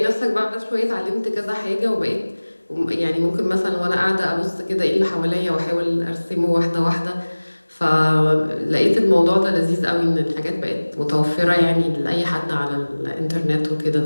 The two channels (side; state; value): both; inverted; correlation -1.00